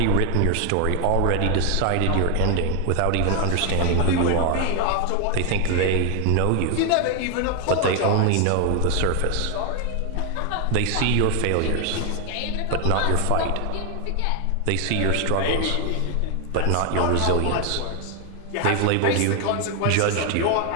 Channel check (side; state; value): both; different; correlation 0.01